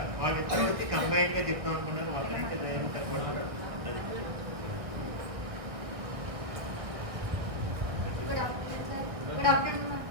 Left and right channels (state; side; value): late; left; 1.6 ms